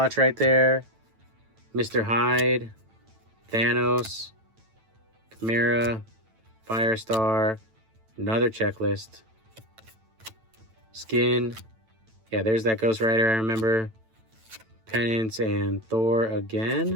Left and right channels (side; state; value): left; late; 9.0 ms